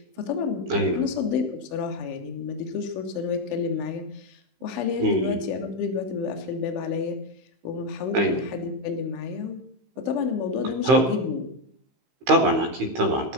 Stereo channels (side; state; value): left; late; 15 ms